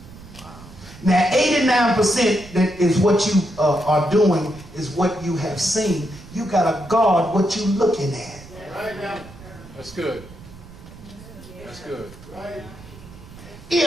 Now, 89% that is what you are doing is what you have seen. You got to guard what you're looking at. That's good. That's good.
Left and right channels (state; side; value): noise; right; rumble, 18 dB below the sound